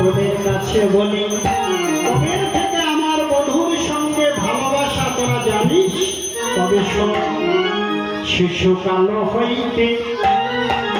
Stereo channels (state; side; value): identical; both; correlation 1.00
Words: কাছে বলি, তোদের থেকে আমার বধূর সঙ্গে ভালোবাসা তোরা জানিস? তবে শোন, শিশুকাল হইতে